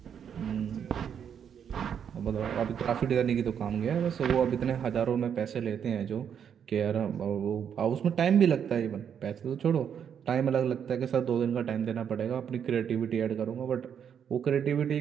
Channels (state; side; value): quieter; left; 8.1 dB